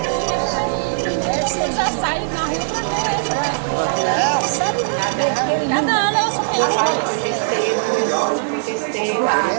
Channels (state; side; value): silent; left; digital silence